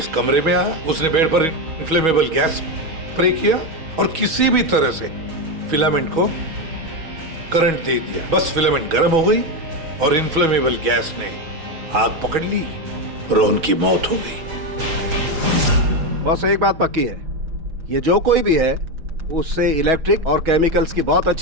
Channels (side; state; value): left; late; 6.2 ms